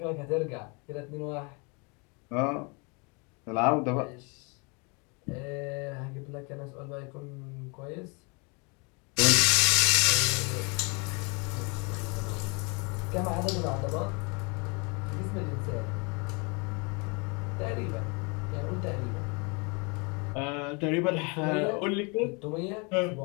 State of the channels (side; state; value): right; quieter; 31.6 dB